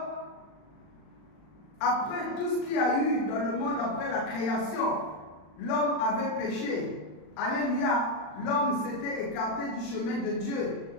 après tout ce qu'il y a eu dans le monde, après la création, l'homme avait péché. Alléluia. L'homme s'était écarté du chemin de Dieu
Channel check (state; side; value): late; right; 39 ms